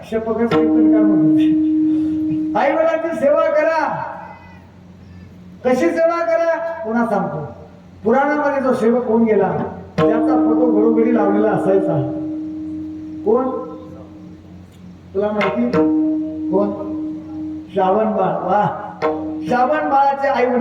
शपथच कीर्तन करा. आई वडिलांची सेवा करा. कशी सेवा करा? पुन्हा सांगतो. पुराणामध्ये जो सेवक होऊन गेला त्याचा फोटो घरोघरी लावलेला असायचा. कोण? तुला माहिती कोण? श्रावण बाळ. वा, श्रावण बाळाचे आई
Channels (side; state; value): both; identical; correlation 1.00